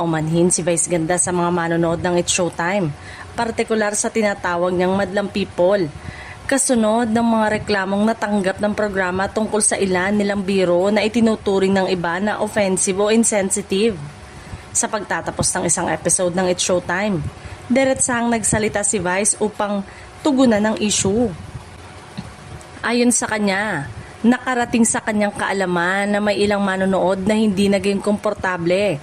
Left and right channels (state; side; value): identical; both; correlation 1.00